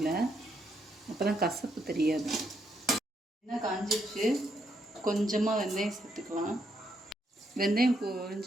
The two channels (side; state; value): both; normal; correlation 0.77